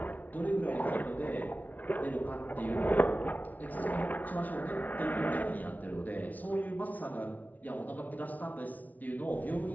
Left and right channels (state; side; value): late; right; 0.076 ms